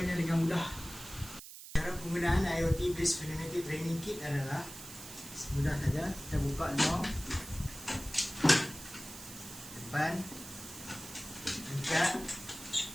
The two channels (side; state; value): right; noise; hiss, 13 dB below the sound